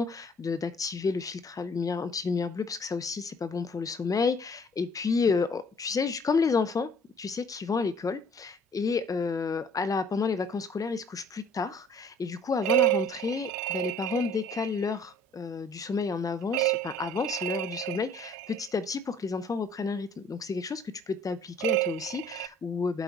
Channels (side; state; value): both; normal; correlation 0.55